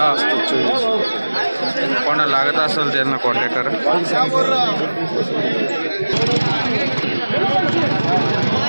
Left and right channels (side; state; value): both; inverted; correlation -1.00